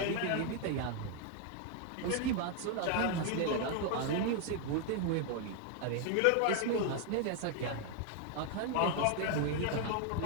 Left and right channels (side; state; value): both; different; correlation 0.00